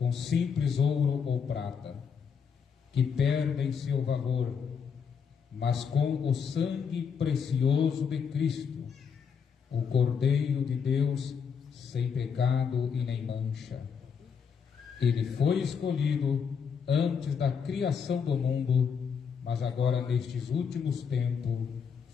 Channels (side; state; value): right; quieter; 6.6 dB